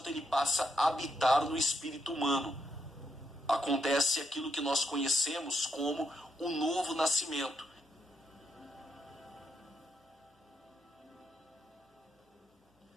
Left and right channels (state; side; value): normal; both; correlation 0.80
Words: ele passa a habitar no espírito humano. Acontece aquilo que nós conhecemos como o novo nascimento.